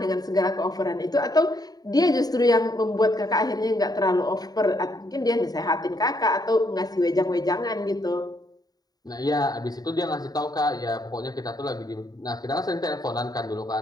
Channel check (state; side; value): late; right; 0.18 ms